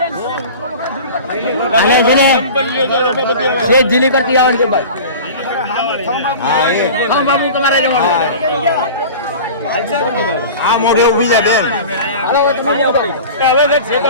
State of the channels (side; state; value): both; inverted; correlation -0.36